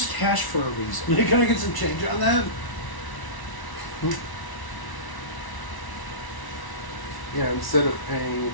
cash for a reason. Hey, can I get some change on that? Yeah, instead of paying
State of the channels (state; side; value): late; right; 1.1 ms